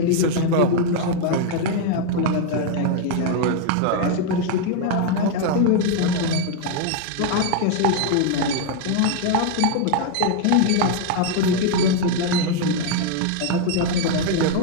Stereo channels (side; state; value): both; different; correlation 0.00